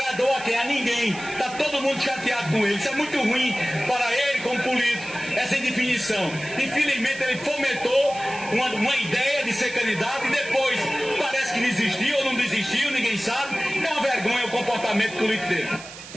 a quem? A ninguém. Está todo mundo chateado com ele. Isso é muito ruim para ele como político, essa indefinição. Infelizmente ele fomentou uma ideia de ser candidato e depois parece que desistiu ou não desistiu, ninguém sabe. É uma vergonha o comportamento político dele.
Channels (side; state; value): right; noise; hiss, 15 dB below the sound